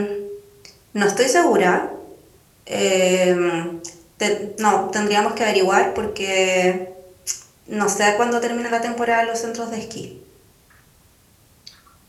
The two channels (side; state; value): both; identical; correlation 1.00